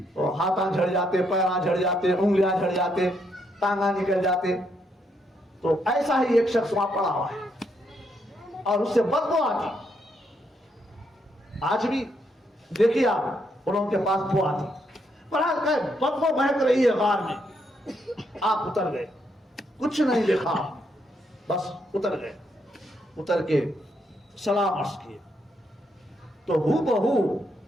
ہاتھاں جھڑ جاتے، پیراں جھڑ جاتے، انگلیاں جھڑ جاتے، ٹانگاں نکل جاتے، تو ایسا ہی ایک شخص وہاں پڑا ہوا ہے اور اس سے بدبو آتی۔ آج بھی دیکھیے آپ، انہوں کے پاس بو آتی، بدبو مہک رہی ہے غار میں۔ آپ اتر گئے، کچھ نہیں دیکھا، بس اتر گئے، اتر کے سلام عرض کیے تو ہو بہو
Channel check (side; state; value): both; normal; correlation 0.76